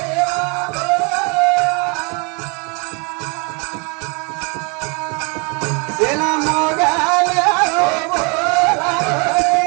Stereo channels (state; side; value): quieter; left; 32.5 dB